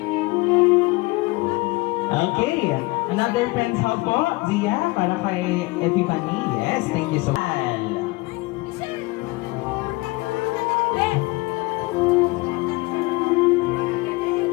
Okay. Another friend's hug po, Zia, para kay Epiphany. Yes, thank you so much.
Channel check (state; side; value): quieter; right; 23.2 dB